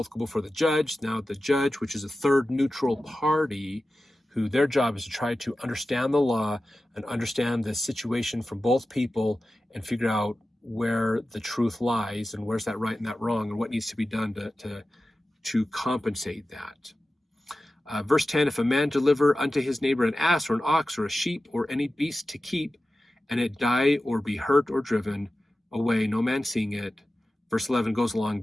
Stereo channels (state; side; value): normal; both; correlation 0.94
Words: go before the judge. Now the judge, which is a third neutral party, who their job is to try to understand the law and understand the situation from both people and figure out where the truth lies and where's that right and that wrong and what needs to be done to compensate that. Verse 10, if a man deliver unto his neighbor an ass or an ox or a sheep or any beast to keep, and it die or be hurt or driven away, no man seeing it. Verse 11 goes along,